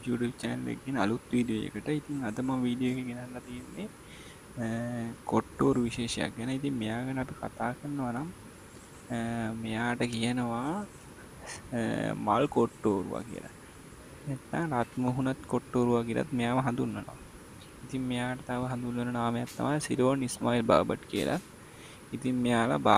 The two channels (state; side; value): identical; both; correlation 1.00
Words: YouTube channel එකකින් අලුත් වීඩියෝ එකට. ඉතින් අද මම වීඩියෝ එක ගෙනල්ලා තියෙන්නේ කොට්ටෝරු විශේෂයක් ගැන. ඉතින් මෙයා ගැන අපි කතා කරනවා නම් මෙයාට කියනවා මල් කොට්ටෝරුවා කියලා. නැත්නම් රත් මුහුණත් කොට්ටෝරුවා කියලාත් මෙයාව හඳුන්වනවා. ඉතින් මෙයාට තව හඳුන්වන නාමයක් තමයි සිරෝන් ඉස්මායිල් බාබට් කියලා. ඉතින් මෙයාලා